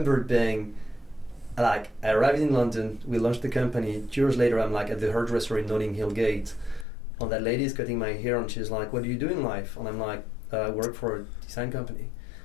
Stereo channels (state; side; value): drops out; right; at 6.9 s